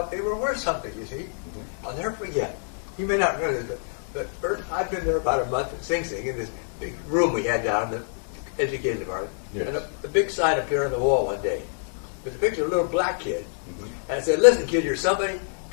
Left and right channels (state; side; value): silent; right; digital silence